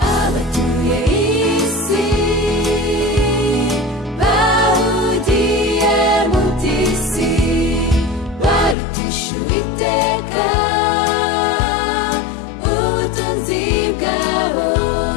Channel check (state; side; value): drops out; right; at 8.8 s